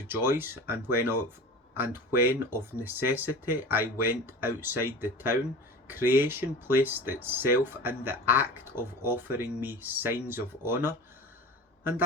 and when of necessity I went outside the town, creation placed itself in the act of offering me signs of honour, and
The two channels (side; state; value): both; normal; correlation 0.35